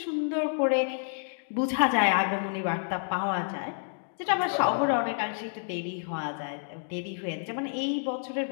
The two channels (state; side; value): silent; right; digital silence